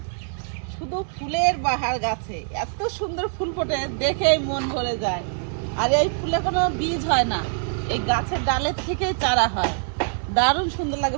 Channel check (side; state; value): left; silent; digital silence